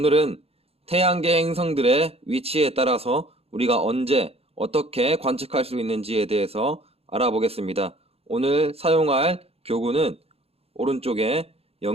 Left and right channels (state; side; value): late; left; 0.29 ms